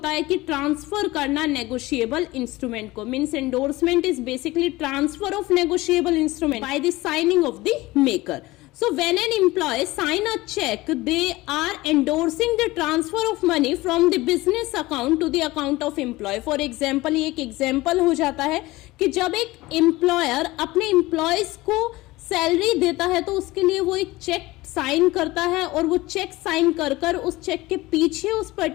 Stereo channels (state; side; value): quieter; right; 19.7 dB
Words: है कि ट्रांसफर करना नेगोशिएबल इंस्ट्रूमेंट को। Means endorsement is basically transfer of negotiable instrument by the signing off the maker. So when an employee sign a check, they are endorsing the transfer of money from the business account to the account of employee. For example, ये एक example हो जाता है कि जब एक employer अपने employees को सैलरी देता है तो उसके लिए वो एक चेक साइन करता है, और वो चेक साइन कर कर उस चेक के पीछे उस